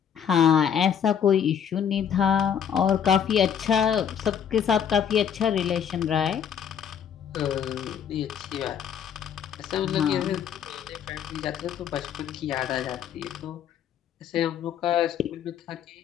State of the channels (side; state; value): right; quieter; 8.3 dB